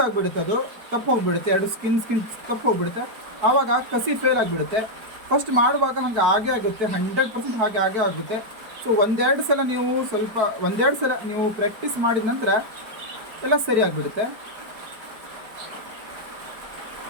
ಆಗಿಬಿಡುತ್ತೆ, ಅದು ತಪ್ಪು ಹೋಗಿಬಿಡುತ್ತೆ. 2 ಸ್ಕಿನ್ ತಪ್ಪು ಹೋಗಿಬಿಡುತ್ತೆ. ಆವಾಗ ಕಸಿ ಫೇಲ್ ಆಗಿಬಿಡುತ್ತೆ. ಫಸ್ಟ್ ಮಾಡುವಾಗ ಹಾಗೆ ಆಗುತ್ತೆ, 100% ಹಾಗೆ ಆಗುತ್ತೆ. ಸೊ ಒಂದೆರಡು ಸಲ ನೀವು ಪ್ರಾಕ್ಟೀಸ್ ಮಾಡಿದ ನಂತರ ಎಲ್ಲ ಸರಿ ಆಗಿಬಿಡುತ್ತೆ.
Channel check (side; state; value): left; late; 4.6 ms